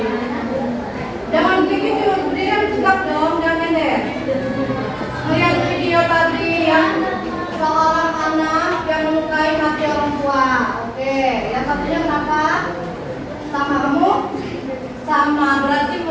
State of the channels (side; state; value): both; identical; correlation 1.00